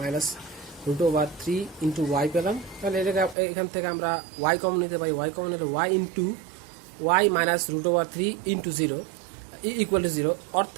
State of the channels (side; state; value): left; drops out; at 3.4 s